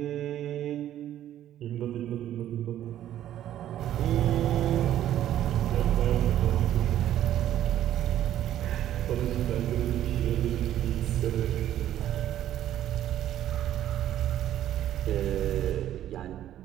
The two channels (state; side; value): quieter; left; 11.9 dB